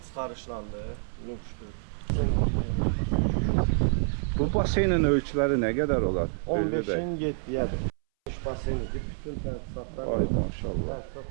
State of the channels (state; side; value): silent; left; 59 dB below the other